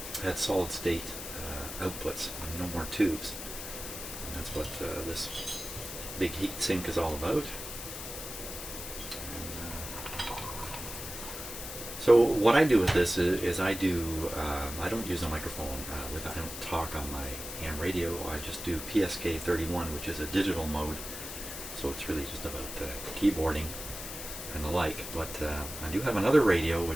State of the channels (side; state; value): left; noise; hiss, 8 dB below the sound